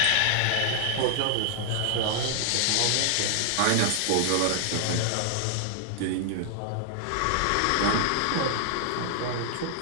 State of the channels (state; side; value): different; both; correlation 0.00